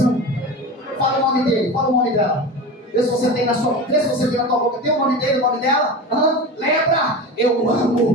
Fala o nome dele, fala o nome dela. Vê se você tem na tua boca. Tem o nome dele, o nome dela? Lembra? Eu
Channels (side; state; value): both; normal; correlation 0.29